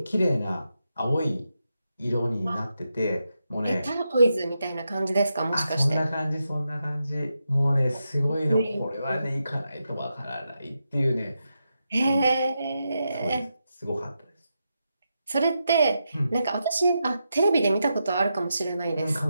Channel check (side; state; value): both; inverted; correlation -0.86